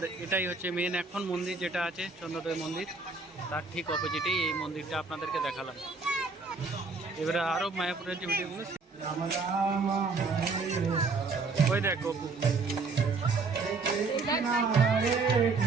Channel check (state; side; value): quieter; left; 4.1 dB